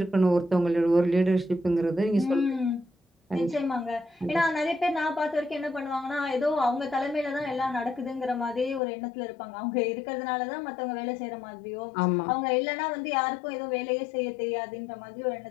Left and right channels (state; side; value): drops out; right; at 8.8 s